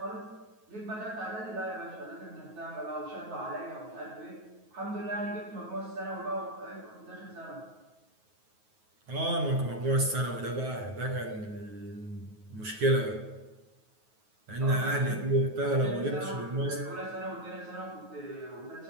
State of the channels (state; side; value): late; left; 9.3 ms